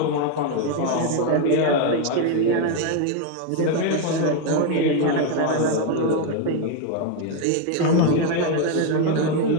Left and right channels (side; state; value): both; different; correlation 0.01